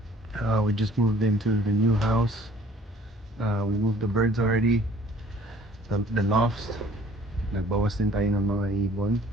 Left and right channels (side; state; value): both; normal; correlation 0.54